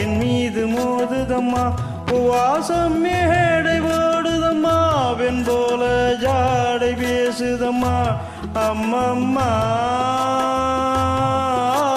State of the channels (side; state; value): both; identical; correlation 1.00